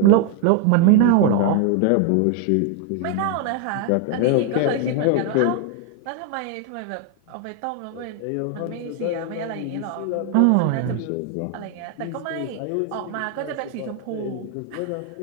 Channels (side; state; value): both; different; correlation 0.00